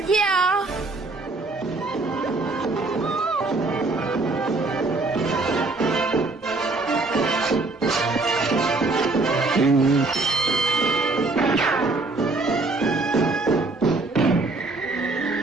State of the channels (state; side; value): quieter; left; 3.4 dB